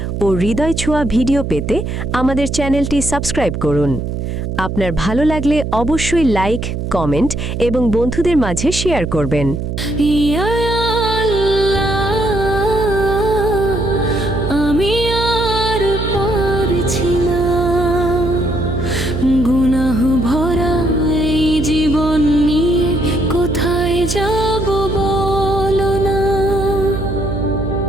ও হৃদয় ছোঁয়া ভিডিও পেতে আমাদের চ্যানেলটি সাবস্ক্রাইব করুন। আপনার ভালো লাগলে অবশ্যই লাইক, কমেন্ট এবং বন্ধুদের মাঝে শেয়ার করবেন। ইয়া আল্লাহ, আমি আর পারছি না, গুনাহ ভরা এই জীবন নিয়ে কোথায় যাব বলো না।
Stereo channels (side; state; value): right; noise; hum, 4 dB below the sound